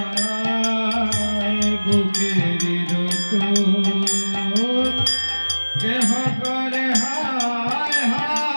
বুকের রত কেহ করে হায়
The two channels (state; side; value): inverted; both; correlation -1.00